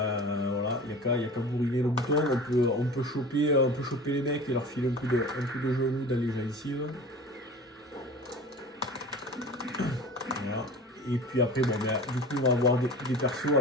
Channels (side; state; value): both; normal; correlation 0.37